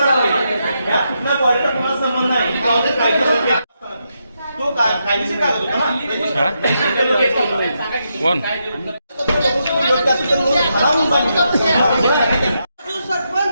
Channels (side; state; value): both; inverted; correlation -0.82